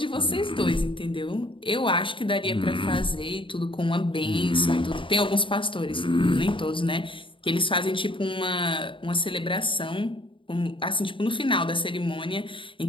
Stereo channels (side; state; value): right; late; 0.25 ms